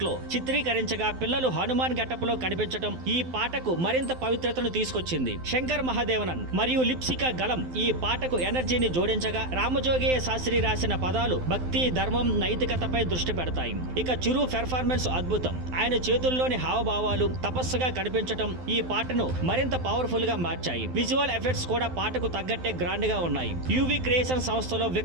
లో చిత్రీకరించగా పిల్లలు హనుమాన్ గెటప్ లో కనిపించడం ఈ పాటకు మరింత పవిత్రతను తీసుకొచ్చింది. శంకర్ మహాదేవనన్ మరియు లిప్సికా గలం ఈ పాటకు ఎనర్జీని జోడించగా రామజోగయ్య శాస్త్రి రాసిన పదాలు భక్తి, ధర్మం, నైతికతపై దృష్టి పెడతాయి. ఇక చిరు పెర్ఫార్మెన్స్ అద్భుతం. ఆయన చేతుల్లోని హావభావాలు తపస్సుగా కనిపించటం ఈ పాటను మరింత పవర్ఫుల్ గా మార్చాయి. విజువల్ ఎఫెక్ట్స్ కూడా పాటకు తగ్గట్టే గ్రాండ్ గా ఉన్నాయి. యువి క్రియేషన్ సంస్థలో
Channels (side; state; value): left; late; 12 ms